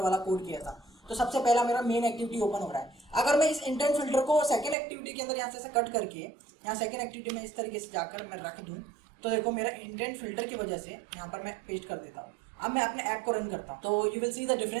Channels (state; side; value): drops out; left; at 4.8 s